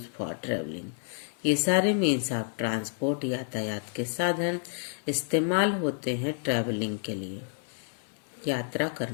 for traveling. ये सारे मीन्स ऑफ ट्रांसपोर्ट यातायात के साधन इस्तेमाल होते हैं ट्रैवलिंग के लिए, यात्रा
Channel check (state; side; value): silent; right; 58 dB below the other